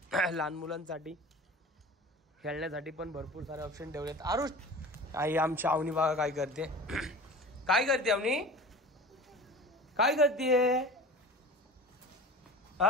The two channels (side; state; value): both; normal; correlation 0.38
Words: लहान मुलांसाठी खेळण्यासाठी पण भरपूर सारे ऑप्शन ठेवलेत. आरुष आई आमची आवनी बघा काय करते. काय करते आवनी? काय करते?